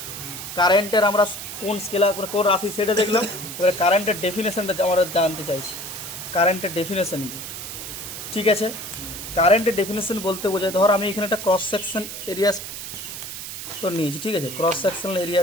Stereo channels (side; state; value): right; noise; hiss, 9 dB below the sound